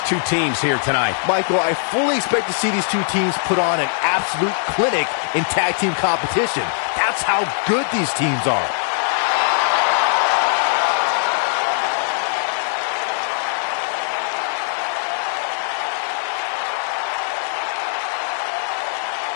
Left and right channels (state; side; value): silent; right; 58 dB below the other